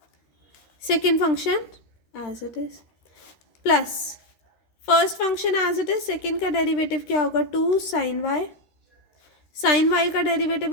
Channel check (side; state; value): right; late; 13 ms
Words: Second function as it is plus first function as it is. Second का डेरिवेटिव क्या होगा 2 साइन y का डेरिवेटिव